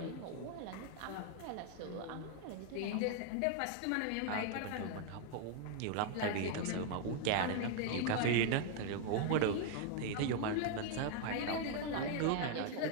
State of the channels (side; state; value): both; different; correlation 0.00